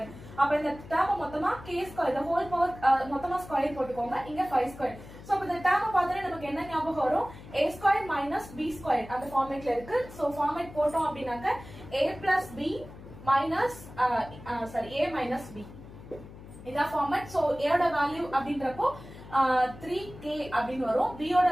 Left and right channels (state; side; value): noise; left; hum, 16 dB below the sound